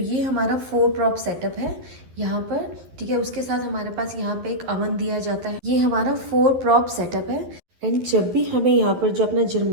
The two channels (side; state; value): left; late; 11 ms